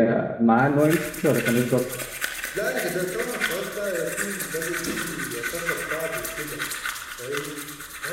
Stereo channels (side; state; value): both; identical; correlation 1.00